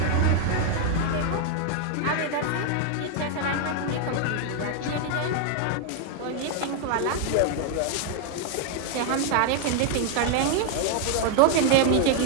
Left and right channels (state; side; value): different; both; correlation 0.00